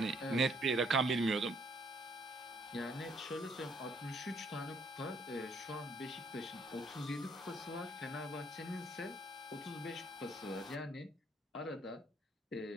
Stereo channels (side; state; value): both; normal; correlation 0.67